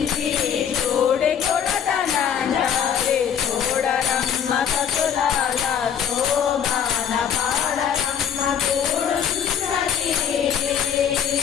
చూడి కొడతనాంజారి చూడరమ్మ సతులాల శోభాన పాడరమ్మ చూడున్నది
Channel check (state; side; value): quieter; right; 8.4 dB